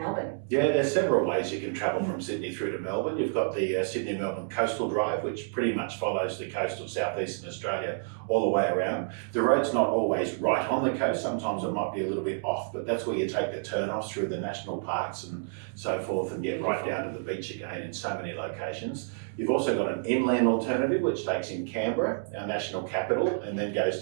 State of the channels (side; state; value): left; silent; digital silence